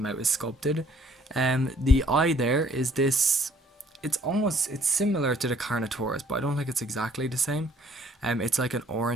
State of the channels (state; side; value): normal; both; correlation 0.61